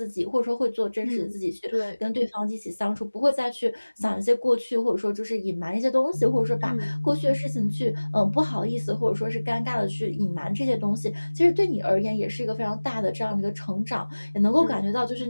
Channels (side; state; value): both; inverted; correlation -1.00